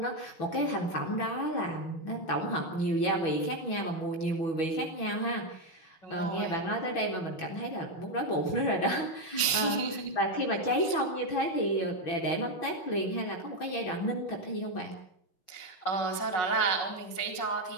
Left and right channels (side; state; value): right; late; 5.5 ms